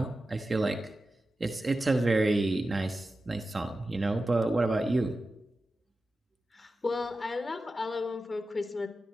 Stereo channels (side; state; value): both; normal; correlation 0.92